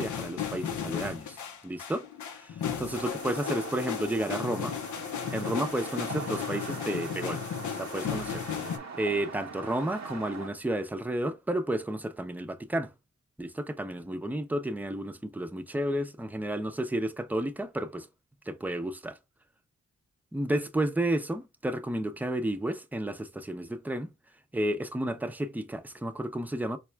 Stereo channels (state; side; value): normal; both; correlation 0.70